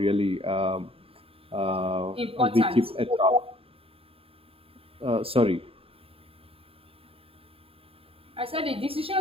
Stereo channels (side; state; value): left; late; 0.27 ms